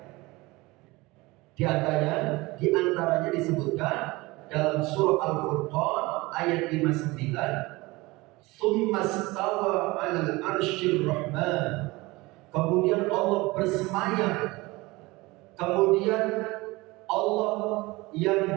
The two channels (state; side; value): quieter; left; 22.1 dB